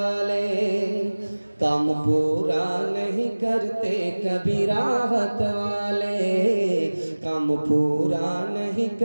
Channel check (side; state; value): both; inverted; correlation -1.00